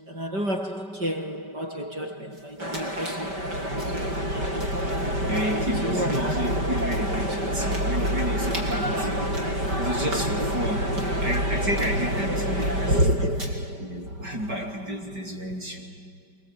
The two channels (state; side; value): late; left; 5.1 ms